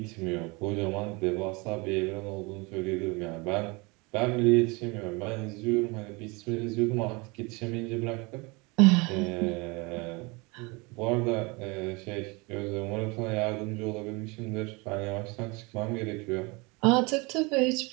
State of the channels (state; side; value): quieter; left; 27.1 dB